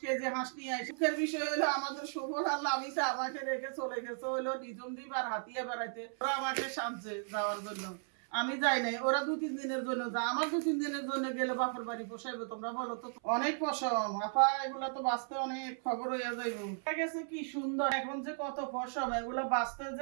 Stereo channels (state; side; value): silent; left; 54 dB below the other